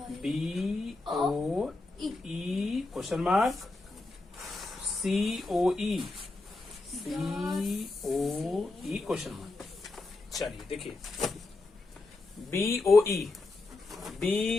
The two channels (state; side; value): quieter; right; 3.2 dB